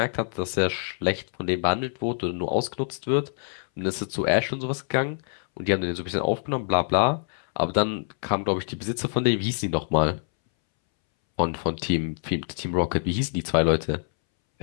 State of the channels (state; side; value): silent; right; 61 dB below the other